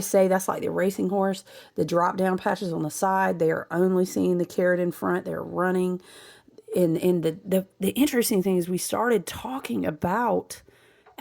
say that's like the racing horse, the drop down patches on the side. They are only seeing the carrot in front. They're running. And the interesting thing is we started talking about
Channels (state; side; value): identical; both; correlation 1.00